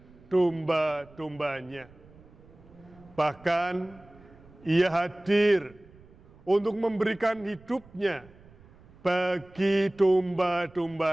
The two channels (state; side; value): noise; right; rumble, 25 dB below the sound